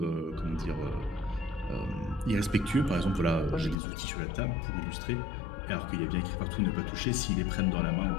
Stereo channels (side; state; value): right; drops out; at 3.8 s